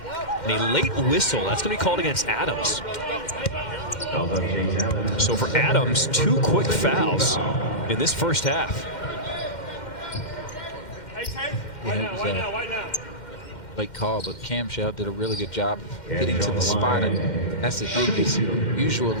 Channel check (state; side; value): late; right; 2.1 ms